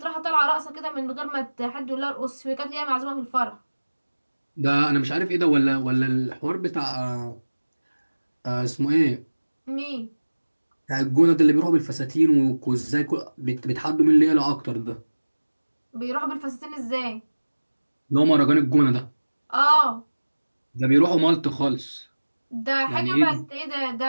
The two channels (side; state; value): both; inverted; correlation -1.00